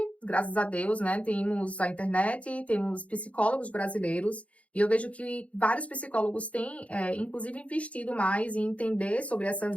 graças a Deus, né, temos a internet, temos psicólogos brasileiros, e eu vejo que vários psicólogos têm, inclusive, investido mais em entender sobre essa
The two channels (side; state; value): right; late; 0.064 ms